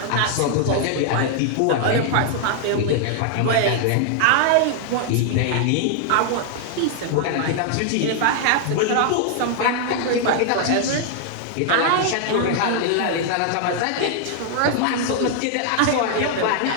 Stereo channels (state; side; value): different; both; correlation 0.00